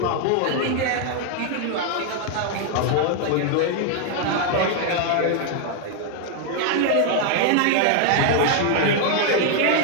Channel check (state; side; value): different; both; correlation 0.01